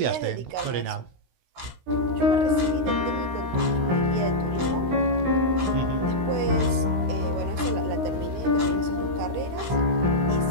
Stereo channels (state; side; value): late; left; 16 ms